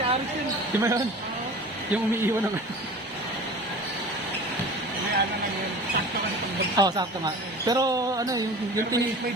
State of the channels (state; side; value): normal; both; correlation 0.39